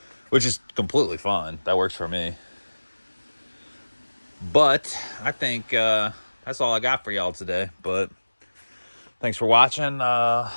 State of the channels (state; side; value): inverted; both; correlation -1.00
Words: which is completely fine. That works for me. But I think that's all I got for y'all today. But thanks for watching.